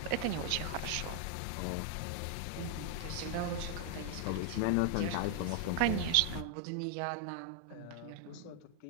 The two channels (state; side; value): different; both; correlation 0.00